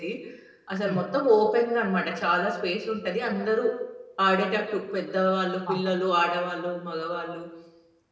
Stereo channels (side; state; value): both; identical; correlation 1.00